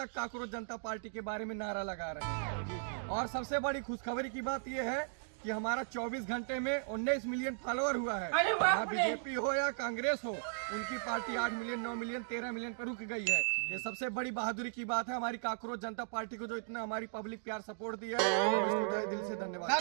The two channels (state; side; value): silent; left; digital silence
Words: काकरोच जनता पार्टी के बारे में नारा लगा रहे हैं। और सबसे बड़ी खुशखबरी की बात यह है कि हमारा 24 घंटे में 19 मिलियन फॉलोअर हुआ है। यहाँ बीजेपी हो या कांग्रेस हो, उनकी पार्टी 8 मिलियन, 9 मिलियन, 13 मिलियन पर रुक गई है। ये सबसे बड़ी बहादुरी की बात है। हमारी काकरोच जनता पार्टी को जो इतना हमारी पब्लिक प्यार सपोर्ट दिया है, उसको तहे दिल से धन्यवाद।